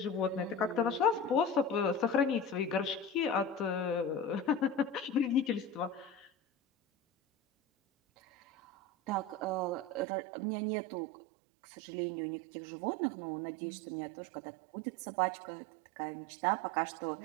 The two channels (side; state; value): left; drops out; at 10.1 s